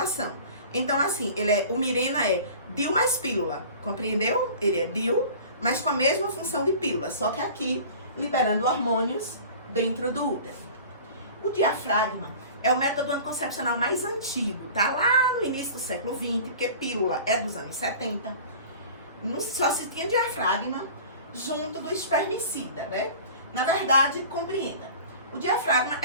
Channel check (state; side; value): inverted; both; correlation -0.42